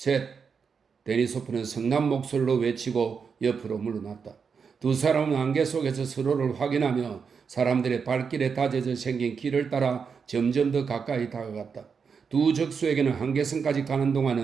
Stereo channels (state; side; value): quieter; left; 5.9 dB